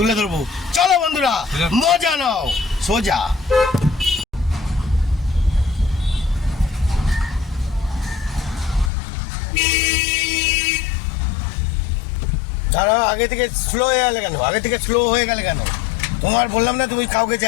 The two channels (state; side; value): drops out; right; at 8.9 s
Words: ধরবো। চলো বন্ধুরা, মজা নাও সোজা। তারা আগে থেকে স্লো হয়ে গেলে কেন? তোমার বললাম না তুমি কাউকে